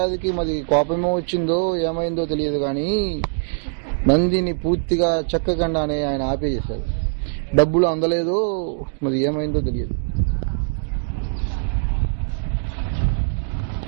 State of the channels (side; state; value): left; silent; digital silence